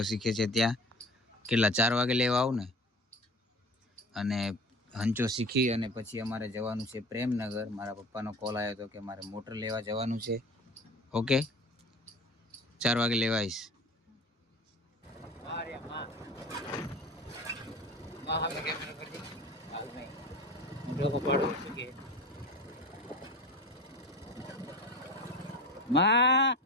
શીખે છે ત્યાં કેટલા 4 વાગે લેવા આવું ને અને હંચો શીખી અને પછી અમારે જવાનું છે પ્રેમનગર મારા પપ્પાનો કોલ આવ્યો હતો કે મારે મોટર લેવા જવાનું છે ઓકે 4 વાગે લેવા આવીશ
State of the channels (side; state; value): both; normal; correlation 0.36